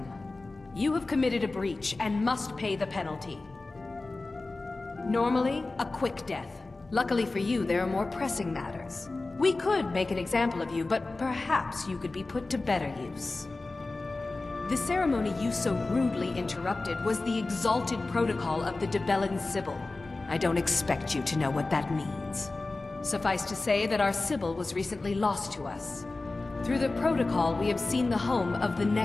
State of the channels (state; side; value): quieter; right; 3.3 dB